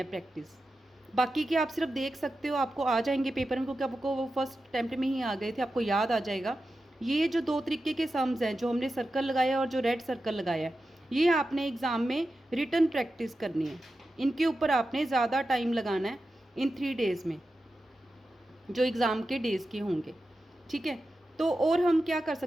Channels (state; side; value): normal; both; correlation 0.91